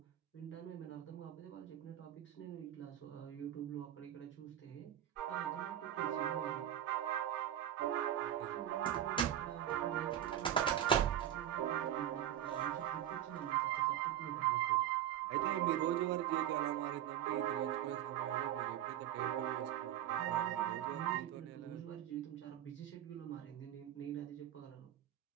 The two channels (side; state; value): left; quieter; 11.3 dB